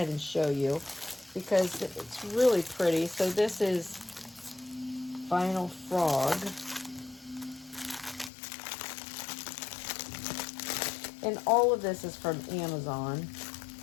and show you because it's really pretty. So this is Vinyl Frog. And all of this is from Amazon.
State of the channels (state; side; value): drops out; right; at 8.3 s